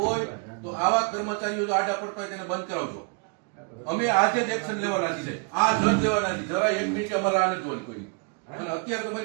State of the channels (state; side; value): quieter; left; 36.2 dB